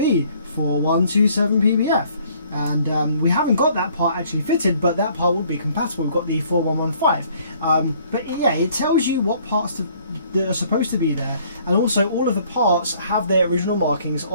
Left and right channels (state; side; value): inverted; both; correlation -0.60